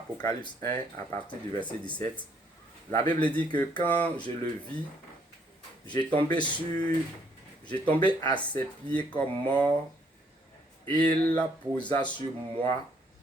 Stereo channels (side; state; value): both; normal; correlation 0.68